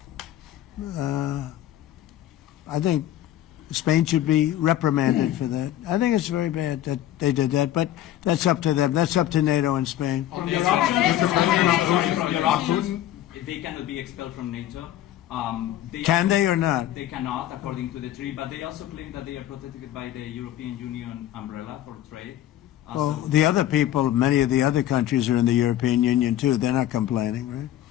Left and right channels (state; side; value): quieter; right; 12.8 dB